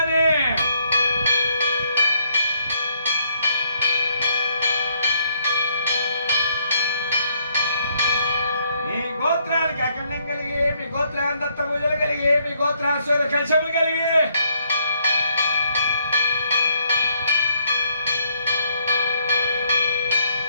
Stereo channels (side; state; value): both; inverted; correlation -0.70